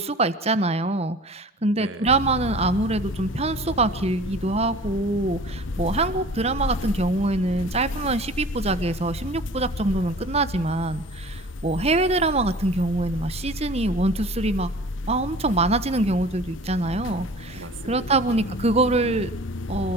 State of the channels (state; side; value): normal; both; correlation 0.43